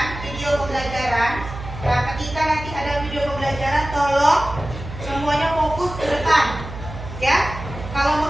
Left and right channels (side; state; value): right; noise; hum, 11 dB below the sound